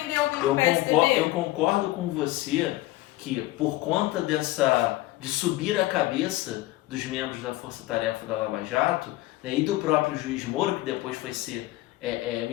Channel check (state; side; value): quieter; right; 17.7 dB